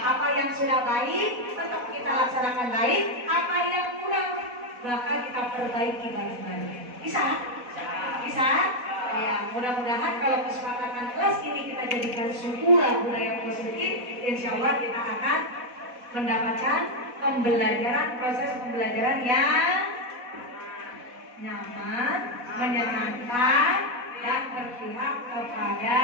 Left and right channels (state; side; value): late; left; 4.1 ms